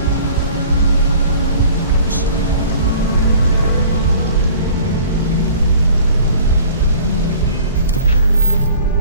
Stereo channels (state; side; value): inverted; both; correlation -0.47